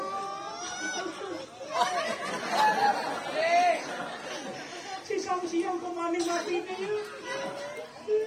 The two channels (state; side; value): identical; both; correlation 1.00